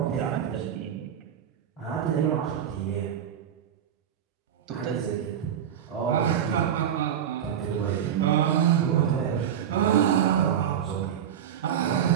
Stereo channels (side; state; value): left; quieter; 9.4 dB